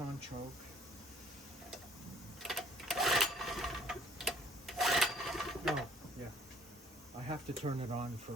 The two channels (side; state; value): both; normal; correlation 0.59